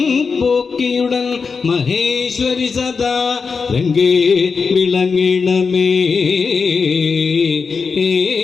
പോക്കിയുടൻ മഹേശ്വരി സദാ രംഗേ വിളങ്ങിടമേ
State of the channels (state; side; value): quieter; right; 5.2 dB